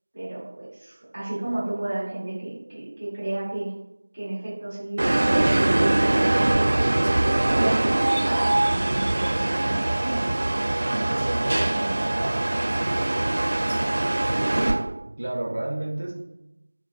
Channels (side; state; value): both; inverted; correlation -1.00